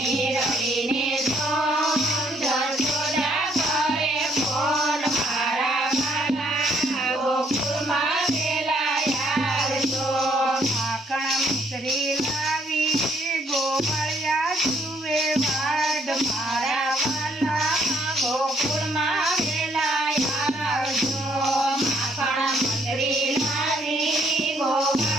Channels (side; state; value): both; normal; correlation 0.67